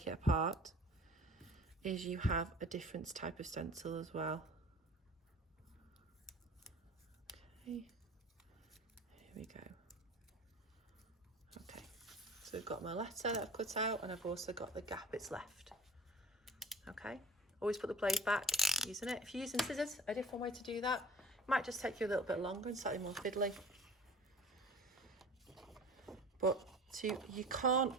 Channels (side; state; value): both; normal; correlation 0.42